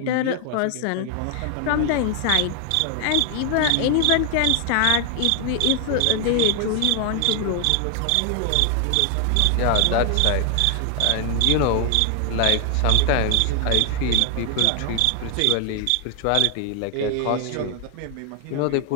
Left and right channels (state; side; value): different; both; correlation 0.00